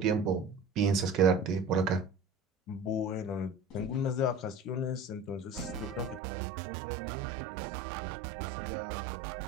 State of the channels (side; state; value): left; drops out; at 6.2 s